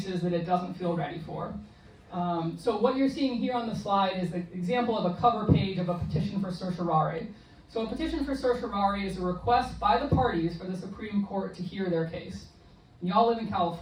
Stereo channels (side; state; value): both; identical; correlation 1.00